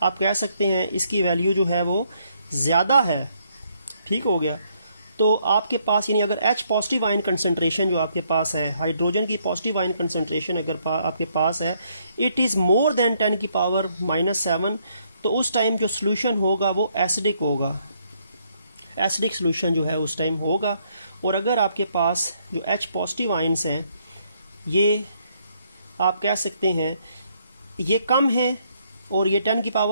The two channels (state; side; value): inverted; both; correlation -0.71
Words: आप कह सकते हैं इसकी वैल्यू जो है वो ज़्यादा है, ठीक हो गया। तो आपके पास यानी अगर H पॉजिटिव आयन कंसंट्रेशन जो आपके पास है, हाइड्रोजन की पॉजिटिव आयन कंसंट्रेशन अगर आपके पास है, इट इज़ मोर देन 10 की पावर -7, तो उस टाइम जो सोल्यूशन होगा वो एसिडिक होगा, एसिडिक सोल्यूशन जो है उस टाइम होगा। और अगर आपके पास जो H पॉजिटिव आयंस हैं ये आप कह सकते हैं ये कम है, और ये 10 की